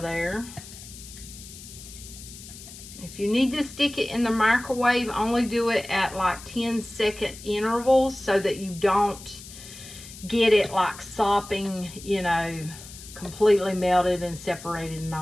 there. If you need to stick it in the microwave, only do it at like 10-second intervals so that you don't get it like sopping, you know, completely melted and separated and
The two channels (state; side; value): noise; left; hiss, 15 dB below the sound